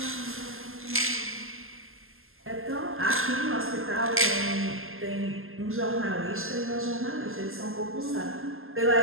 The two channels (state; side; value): late; left; 0.61 ms